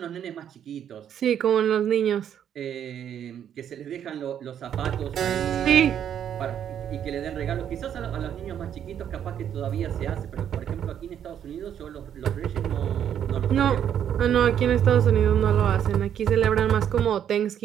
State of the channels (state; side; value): quieter; left; 9.4 dB